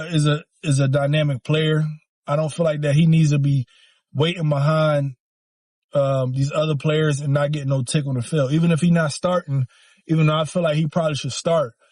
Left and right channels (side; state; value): both; identical; correlation 1.00